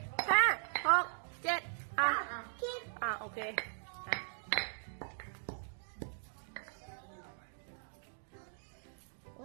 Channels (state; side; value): silent; left; digital silence